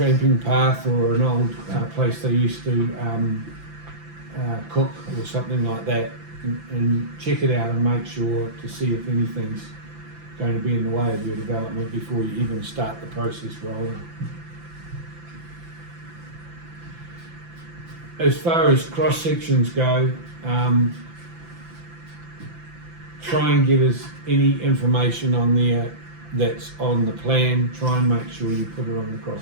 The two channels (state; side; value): late; left; 5.9 ms